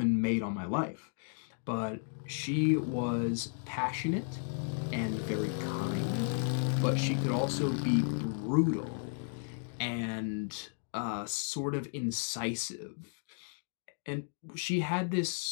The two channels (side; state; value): right; silent; digital silence